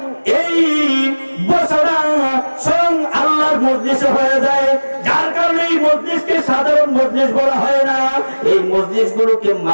এই বছরা স্বয়ং আল্লাহর মজলিসে হয়ে যায়, যার কারণে এই মজলিসকে সাধারণ মজলিস বলা হয় না, এই মজলিস গুলোকে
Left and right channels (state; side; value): inverted; both; correlation -1.00